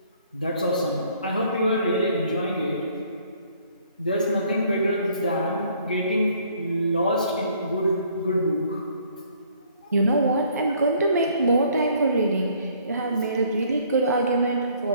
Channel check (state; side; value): inverted; both; correlation -0.61